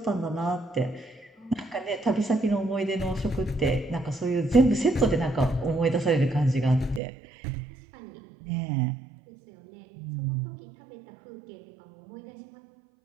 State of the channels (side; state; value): left; drops out; at 7.0 s